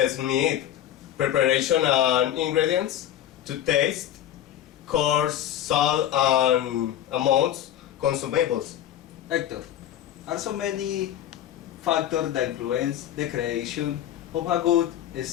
meat, preparation and ingredients to taste, coarse, salt and amounts consumables. Hector, are so many factors that influence the creation of a good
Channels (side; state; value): right; quieter; 11.4 dB